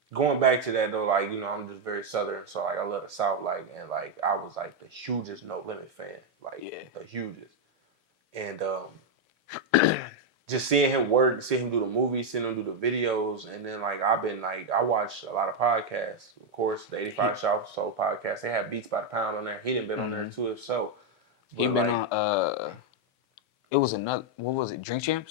going back to that though, like I'm just very Southern, so like I love the South, like and like I was like the hugest No Limit fan, like the hugest, and just seeing him work, seeing him do the movies, seeing him do the videos, and then like I've been like I watch a lot of podcasts. Of course, the 85 Show Soul podcast. They have Beats by the Pound on there. He didn't been on there too, if so. He But been like, on. It was another. What was it? Drink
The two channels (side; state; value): both; normal; correlation 0.02